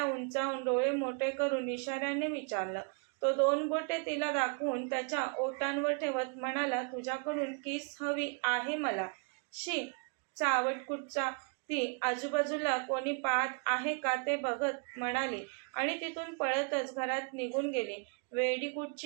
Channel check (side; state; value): left; quieter; 37.2 dB